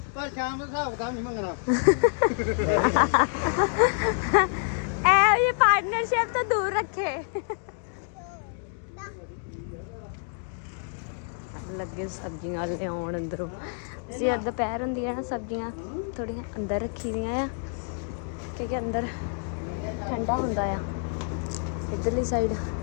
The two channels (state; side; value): silent; right; 60 dB below the other